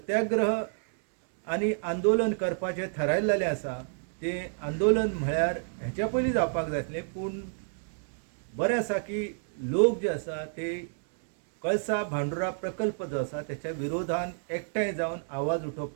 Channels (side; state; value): left; silent; digital silence